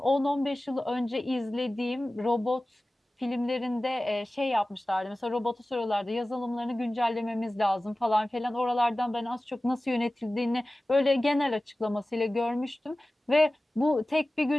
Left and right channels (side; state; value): both; normal; correlation 0.97